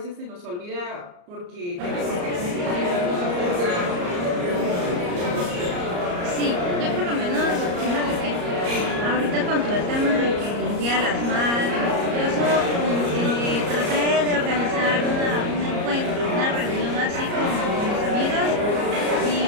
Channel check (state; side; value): late; left; 34 ms